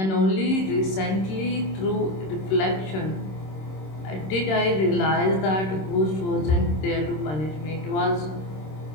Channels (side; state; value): right; late; 26 ms